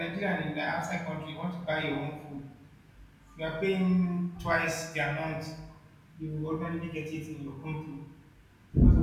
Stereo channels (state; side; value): identical; both; correlation 1.00